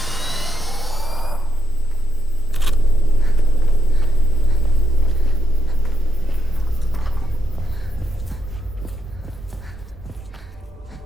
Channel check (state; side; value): normal; both; correlation 0.80